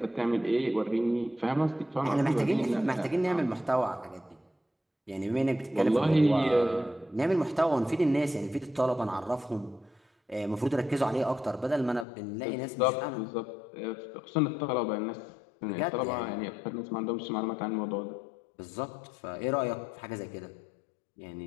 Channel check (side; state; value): right; drops out; at 12.1 s